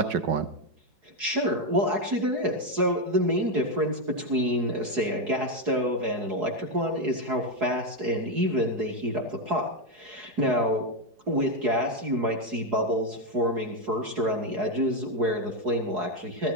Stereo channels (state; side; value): late; left; 4.8 ms